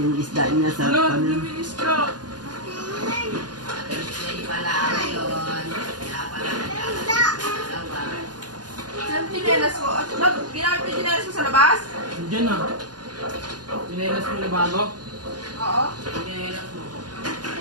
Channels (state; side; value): late; left; 0.69 ms